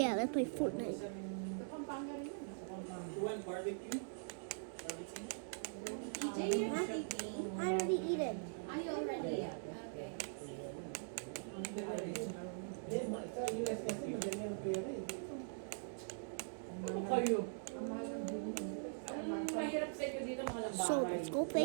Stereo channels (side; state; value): left; silent; digital silence